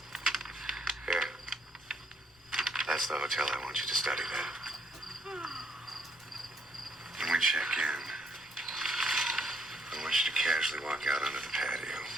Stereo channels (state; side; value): noise; left; rumble, 30 dB below the sound